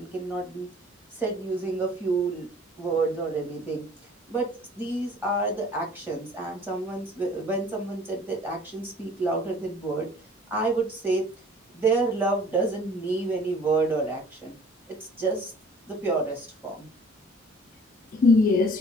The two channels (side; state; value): both; normal; correlation 0.51